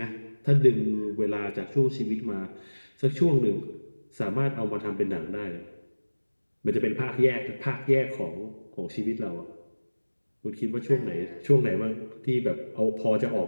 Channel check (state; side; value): inverted; both; correlation -1.00